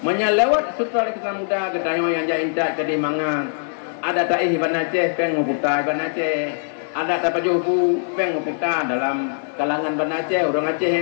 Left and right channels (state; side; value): silent; right; 65 dB below the other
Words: Menyelewat Sultan Iskandar Muda kedayo yang jainta ke Dimangan. Ada taih Iban Aceh peng nguputa Iban Aceh. Ada tak pajuhu peng kita dalam kalangan Banda Aceh, orang Aceh